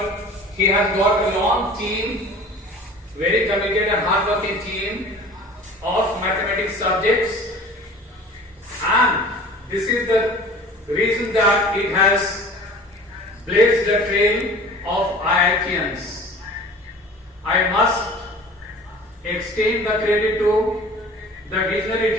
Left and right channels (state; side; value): normal; both; correlation 0.43